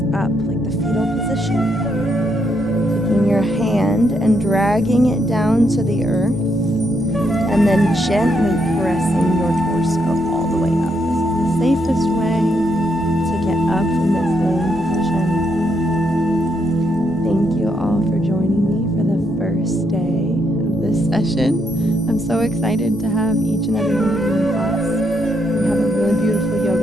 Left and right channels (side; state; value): both; normal; correlation 0.77